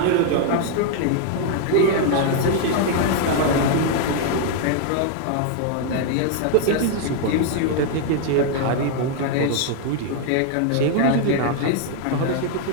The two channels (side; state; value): both; different; correlation 0.00